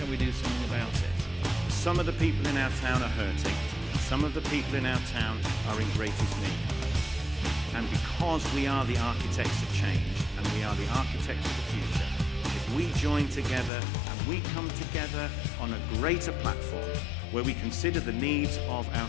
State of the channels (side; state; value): right; drops out; at 13.7 s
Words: we do something about it. Some of the people in our town are hurting, and some of the people in our town are in greatest need. And because we are the architects of change and we are the architects of the future, if we join together and we come together on a greater platform where we consider the needs of our